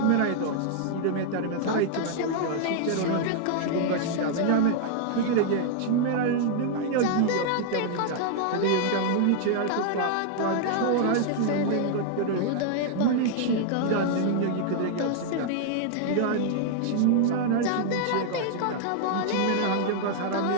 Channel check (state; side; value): different; both; correlation -0.01